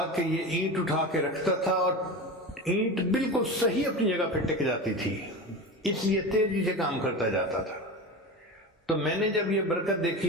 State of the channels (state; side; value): normal; both; correlation 0.27